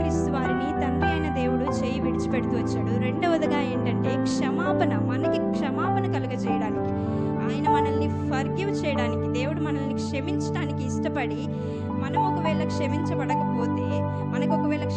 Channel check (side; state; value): right; noise; hum, 29 dB below the sound